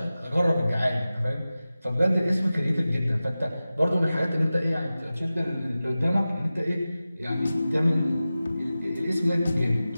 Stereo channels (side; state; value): both; inverted; correlation -0.95